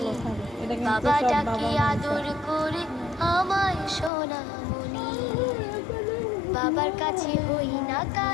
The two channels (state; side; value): drops out; right; at 4.1 s